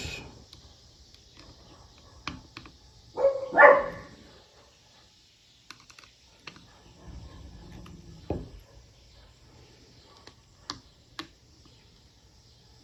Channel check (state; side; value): normal; both; correlation 0.95